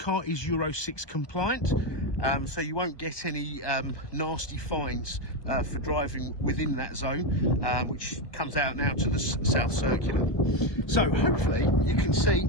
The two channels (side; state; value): right; late; 1.2 ms